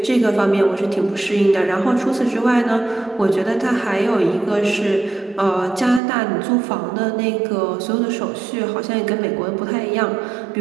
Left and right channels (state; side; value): drops out; left; at 6.0 s